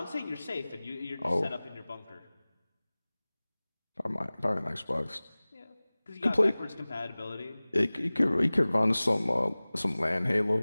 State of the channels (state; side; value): inverted; both; correlation -0.99